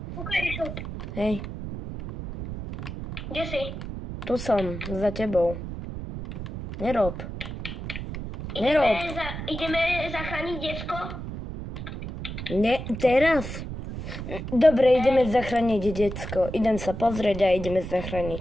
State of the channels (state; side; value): noise; right; rumble, 8 dB below the sound